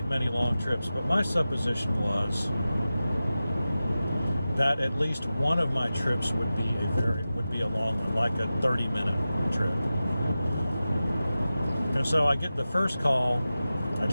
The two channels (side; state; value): both; inverted; correlation -0.94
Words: many long trips, but my supposition was that at least one of my trips would be a long one, like a 30-minute trip. And so I get the first call, I